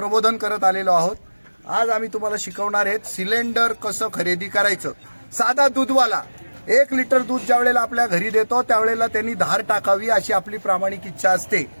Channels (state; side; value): inverted; both; correlation -1.00